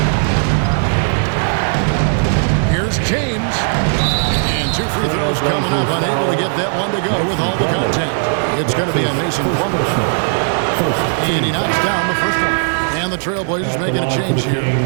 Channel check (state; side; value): silent; left; digital silence